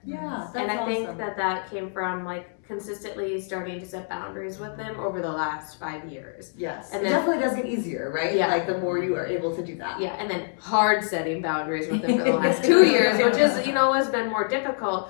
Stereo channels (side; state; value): right; silent; 61 dB below the other